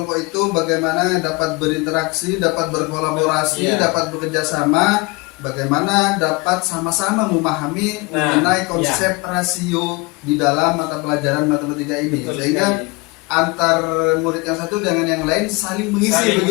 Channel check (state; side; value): quieter; right; 25.8 dB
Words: itu bagaimana dapat berinteraksi, dapat berkolaborasi, dapat bekerja sama, bagaimana dapat sama-sama memahami mengenai konsep rasio di dalam mata pelajaran matematika ini. Sehingga antar murid yang satu dengan yang lain saling mengisi